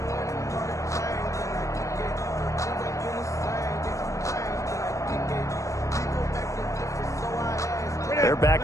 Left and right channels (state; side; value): late; right; 0.15 ms